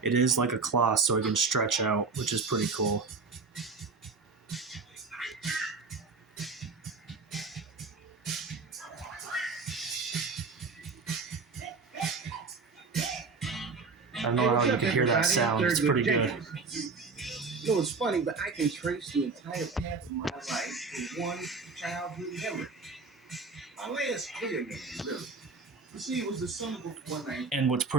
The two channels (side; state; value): left; quieter; 4.4 dB